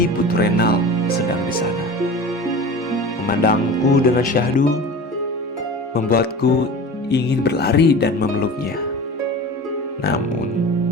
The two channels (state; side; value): normal; both; correlation 0.35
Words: Putu Renal sedang di sana. Memandangku dengan syahdu, membuatku ingin berlari dan memeluknya. Namun,